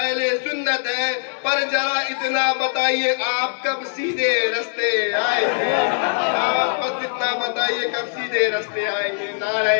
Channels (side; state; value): right; silent; 65 dB below the other